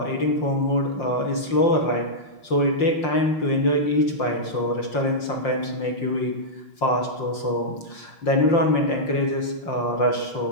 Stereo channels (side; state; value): right; late; 5.7 ms